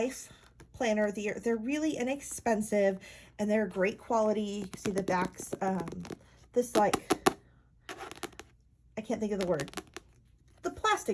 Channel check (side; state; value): both; identical; correlation 1.00